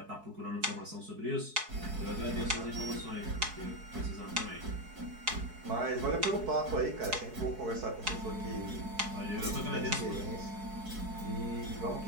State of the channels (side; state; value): left; late; 4.6 ms